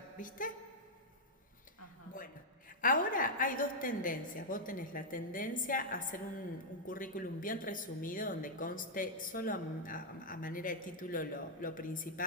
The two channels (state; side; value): normal; both; correlation -0.04